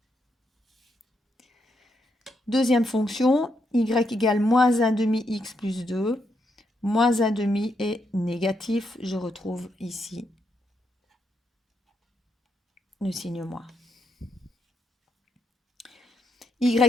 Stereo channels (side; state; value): both; normal; correlation 0.80